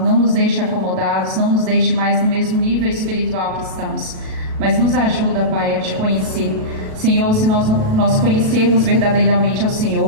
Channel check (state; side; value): late; left; 37 ms